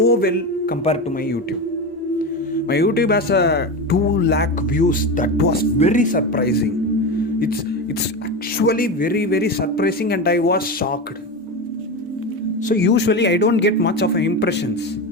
well compared to my YouTube. My YouTube has a 2 lakh views. That was very surprising. It's actually very, very surprising, and I was shocked. So usually I don't get much of impressions,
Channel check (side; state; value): both; normal; correlation 0.20